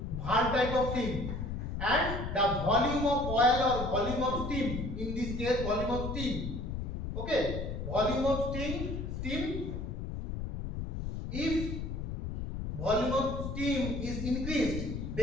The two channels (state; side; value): noise; left; rumble, 5 dB below the sound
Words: valve type of thing, and the volume of oil or volume of steam, in this case volume of steam. Okay, volume of steam If volume of steam is increased,